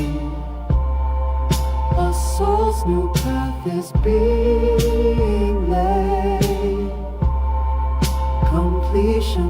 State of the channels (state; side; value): identical; both; correlation 1.00